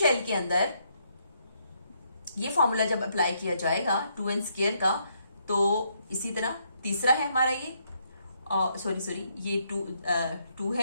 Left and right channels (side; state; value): both; inverted; correlation -0.74